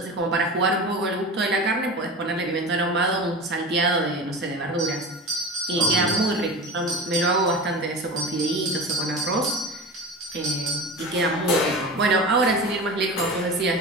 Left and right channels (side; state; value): both; normal; correlation 0.30